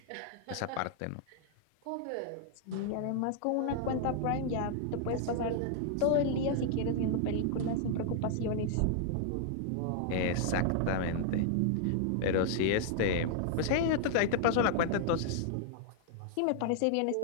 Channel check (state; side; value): different; both; correlation -0.01